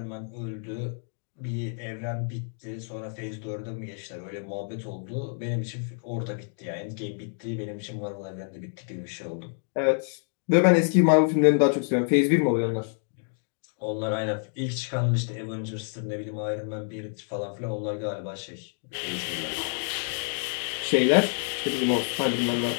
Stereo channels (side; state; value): right; silent; 59 dB below the other